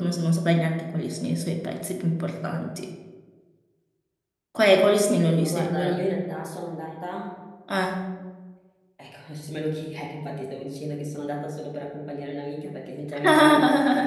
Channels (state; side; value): identical; both; correlation 1.00